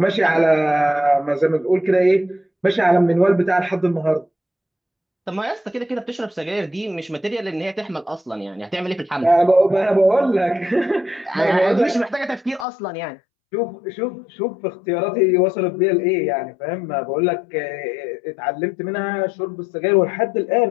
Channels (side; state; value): right; drops out; at 12.7 s